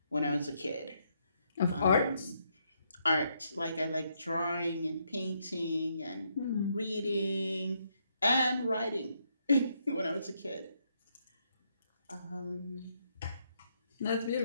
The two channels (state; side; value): inverted; both; correlation -0.76